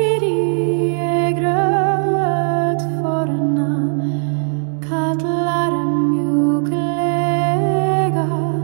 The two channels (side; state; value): left; silent; digital silence